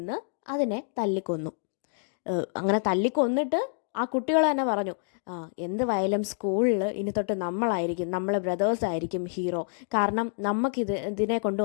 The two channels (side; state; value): right; silent; digital silence